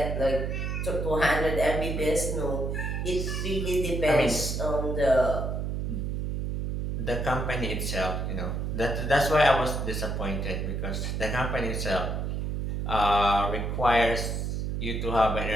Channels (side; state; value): right; noise; hum, 2 dB below the sound